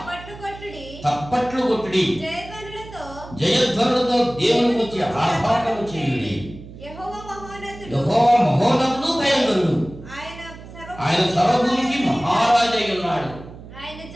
తప్పట్లు కొట్టుడి, జయధ్వనులతో దేవుని గురించి ఆర్భాటము చేయుడి. యెహోవా మహోన్నతుడు, భయంకరుడు, ఆయన సర్వభూమికి మహారాజై ఉన్నాడు.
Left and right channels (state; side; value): noise; right; hum, 16 dB below the sound